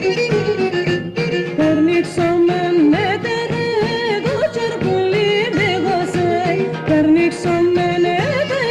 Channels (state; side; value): identical; both; correlation 1.00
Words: Περνίξομεν έτερε το τσαρπουλί δίγωσε, περνίξομεν